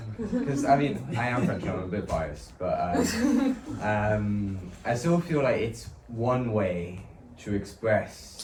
Because I mean, I am French, I'm a bit biased, but I still feel like it's one way to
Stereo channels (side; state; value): both; identical; correlation 1.00